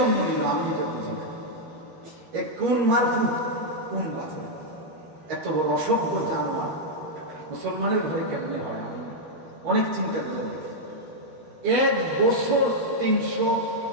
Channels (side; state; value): left; late; 13 ms